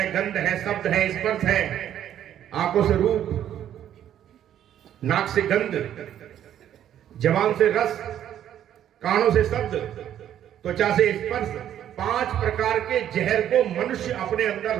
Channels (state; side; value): quieter; left; 10.7 dB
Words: गंध है, शब्द है, स्पर्श है। आंखों से रूप, नाक से गंध, जबान से रस, कानों से शब्द, त्वचा से स्पर्श, 5 प्रकार के जहर को मनुष्य अपने अंदर